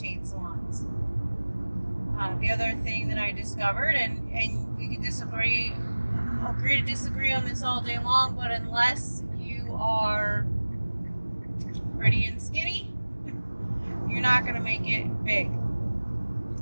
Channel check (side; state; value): both; inverted; correlation -1.00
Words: salons. The other thing that I discovered, and we could agree to disagree on this all day long, but unless you are pretty and skinny, you're not going to make it big